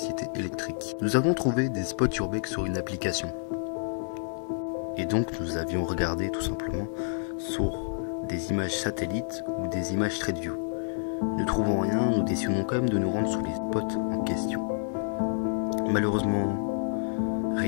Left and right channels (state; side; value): silent; right; 59 dB below the other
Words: électrique. Nous avons trouvé des spots Urbex sur une application. Et donc nous avions regardé tout simplement sur des images satellites ou des images Street View. Ne trouvant rien, nous décidons quand même de nous rendre sur les spots en question. Malheureusement,